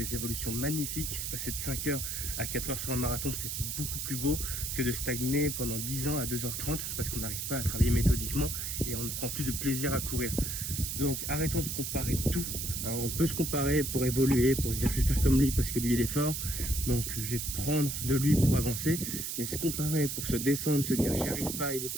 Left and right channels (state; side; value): noise; right; hiss, 3 dB below the sound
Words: évolutions magnifiques. Passer de 5h à 4h sur un marathon, c'est beaucoup plus beau que de stagner pendant 10 ans à 2h30 parce qu'on n'arrive pas à travailler méthodiquement et on ne prend plus de plaisir à courir. Donc arrêtons de comparer tout. On peut se comparer pour évoluer, pour se dire je vais faire comme lui parce que lui il est fort, donc je vais prendre de lui pour avancer. Mais se comparer pour se descendre, se dire j'y arrive pas, il est